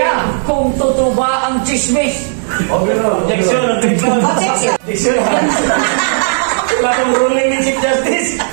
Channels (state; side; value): silent; left; digital silence